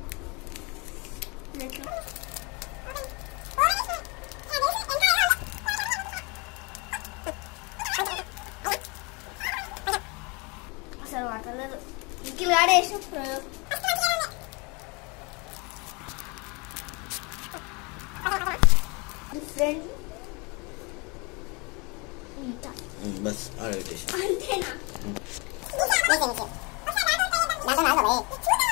అసలు వాటలేదు ఇంకిల్ ఆడేసిన డిఫరెంట్ బస్ ఆడబెట్టేసి అంతేనా?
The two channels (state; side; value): quieter; right; 29.0 dB